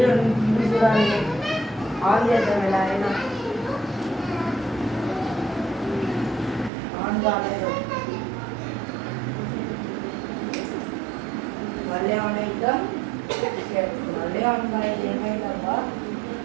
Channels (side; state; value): left; drops out; at 6.7 s